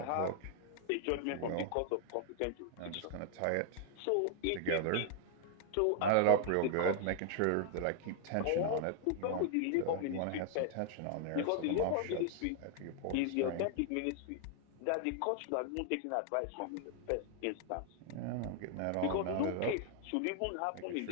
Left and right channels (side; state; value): both; different; correlation 0.00